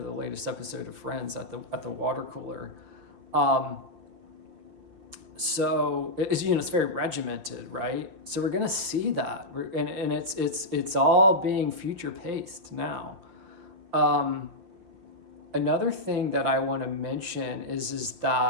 latest episode of Friends at the water cooler. So it's, you know, it's very regimented, right? So we're going to see that, and it's all being future paced now. Another thing that I want to mention is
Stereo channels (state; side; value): late; left; 6.3 ms